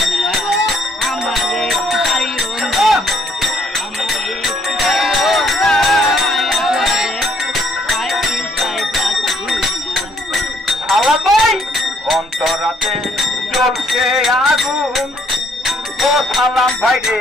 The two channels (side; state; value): both; normal; correlation 0.67